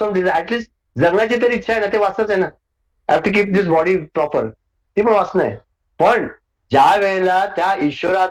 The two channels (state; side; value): identical; both; correlation 1.00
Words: desire. At least जगण्याची तरी इच्छा आहे ना, ते वासनाच आहे ना. Have to keep this body proper, ती पण वासना आहे. पण ज्या वेळेला त्या